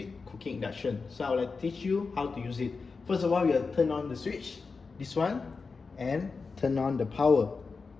Cooking Induction. So I will teach you how to use it. First of all, you will turn on the switch, this one, and turn on the power,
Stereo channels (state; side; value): quieter; right; 4.6 dB